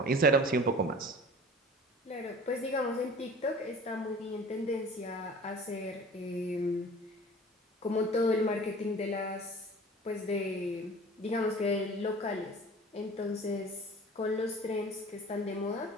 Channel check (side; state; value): both; normal; correlation 0.43